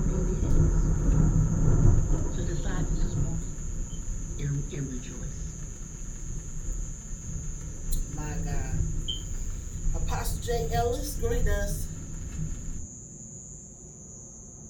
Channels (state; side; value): identical; both; correlation 1.00